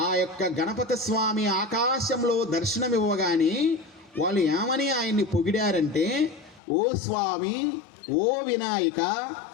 ఆ యొక్క గణపతి స్వామి ఆకాశంలో దర్శనమివ్వగానే వాళ్ళు ఏమని ఆయన్ని పొగిడారంటే, ఓ స్వామి, ఓ వినాయక,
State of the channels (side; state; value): right; drops out; at 6.6 s